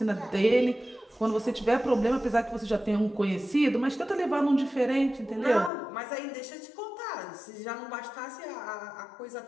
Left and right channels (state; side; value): drops out; right; at 5.7 s